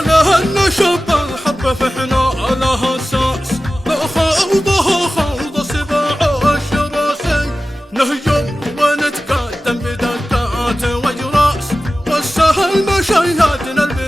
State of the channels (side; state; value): both; normal; correlation 0.95